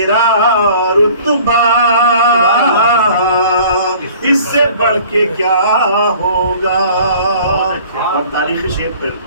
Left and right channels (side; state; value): both; inverted; correlation -0.50